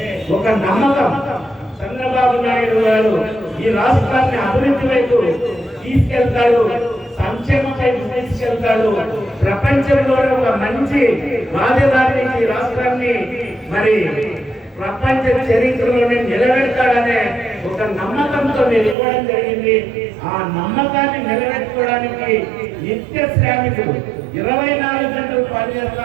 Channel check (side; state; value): left; drops out; at 18.9 s